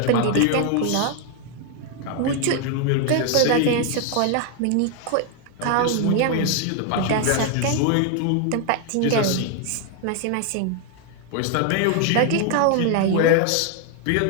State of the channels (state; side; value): different; both; correlation 0.00